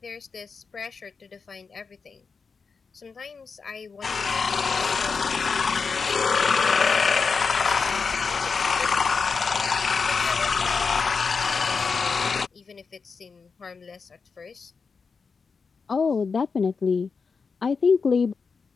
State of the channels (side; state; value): right; quieter; 5.1 dB